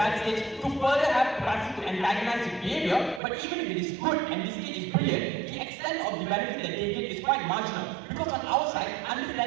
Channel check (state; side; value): drops out; left; at 3.2 s